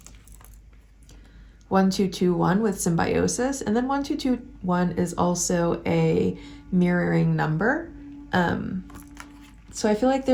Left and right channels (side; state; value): both; identical; correlation 1.00